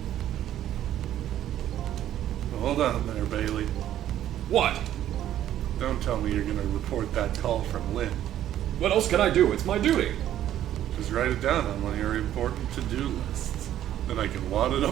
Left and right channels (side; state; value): left; quieter; 11.8 dB